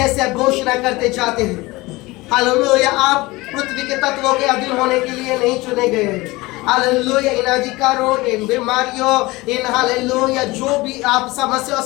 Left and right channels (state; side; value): quieter; right; 21.4 dB